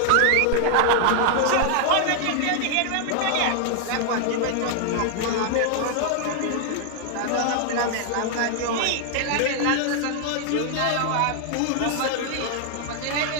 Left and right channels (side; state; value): both; different; correlation 0.00